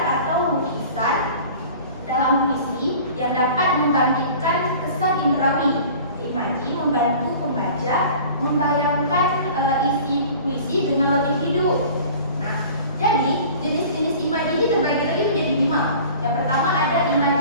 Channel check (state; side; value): inverted; both; correlation -0.44